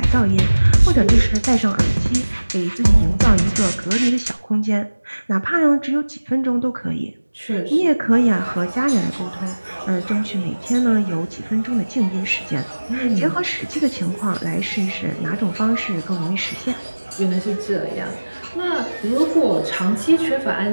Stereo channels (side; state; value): both; inverted; correlation -1.00